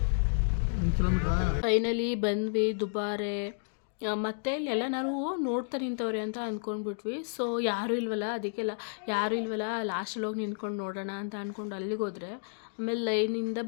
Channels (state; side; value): silent; right; digital silence